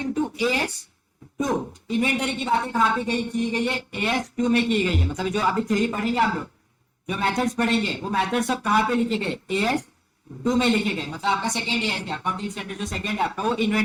to as 2. इन्वेंटरी की बातें कहाँ पे की गई है? एएस 2 में की गई है. मतलब जो अभी थ्योरी पढ़ेंगे आप लोग, जो मेथड्स पढ़ेंगे, वो मेथड्स सब कहाँ पे लिखे गए? एएस 2 में लिखे गए. मतलब आपका सेकंड एएस क्या, अकाउंटिंग स्टैंडर्ड जो सेकंड है आपका, वो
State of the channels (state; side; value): identical; both; correlation 1.00